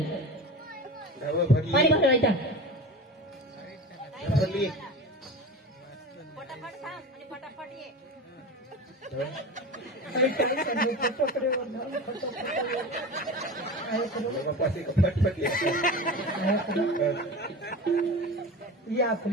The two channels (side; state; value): both; normal; correlation 0.30